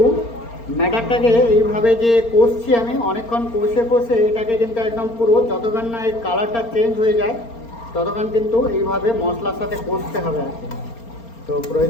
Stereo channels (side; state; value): right; late; 4.3 ms